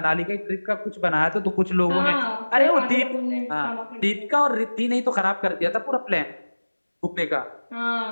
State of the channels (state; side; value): inverted; both; correlation -1.00